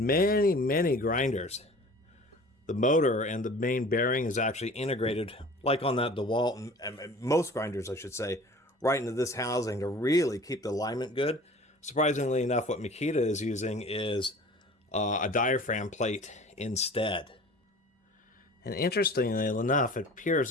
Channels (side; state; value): both; normal; correlation 0.44